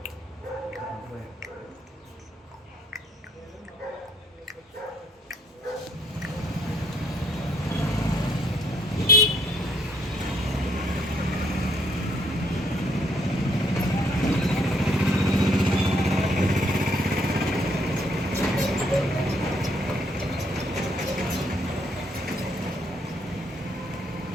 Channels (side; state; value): both; normal; correlation 0.67